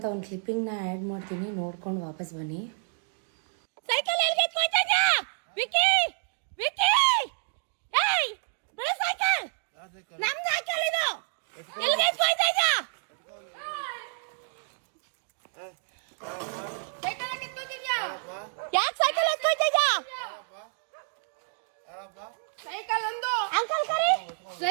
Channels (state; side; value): silent; left; digital silence